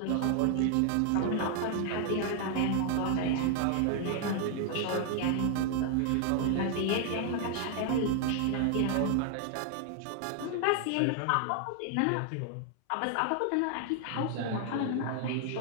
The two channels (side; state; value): both; different; correlation 0.00